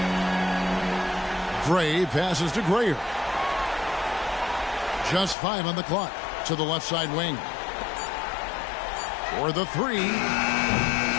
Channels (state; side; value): drops out; right; at 5.4 s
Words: Gray passes to Grayer. Just 5 on the clock to the left side wing. For the 3.